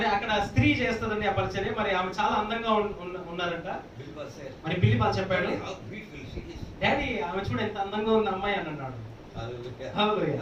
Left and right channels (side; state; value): both; identical; correlation 1.00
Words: అక్కడ స్త్రీ చేస్తదండి ఆ పరిచర్య. మరి ఆమె చాలా అందంగా ఉన్నారంట. Bilbal said, మరి బిల్లి పాల్ చెప్పాడు, "How beautiful she is." Daddy ఆమె చూడు ఎంత అందంగా ఉంది అమ్మాయి అని అన్నాడు. Hallelujah. Hallelujah.